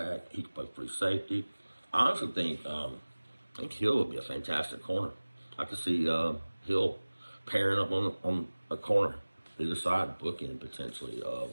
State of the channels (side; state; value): both; inverted; correlation -1.00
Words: He can play free safety. I honestly think Hill would be a fantastic corner. I could see Hill pairing up on a corner, either side, booking potentially of